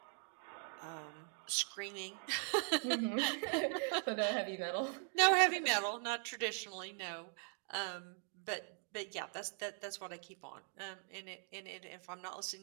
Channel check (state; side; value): silent; left; 51 dB below the other